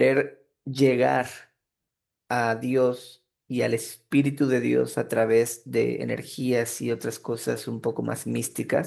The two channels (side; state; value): both; identical; correlation 1.00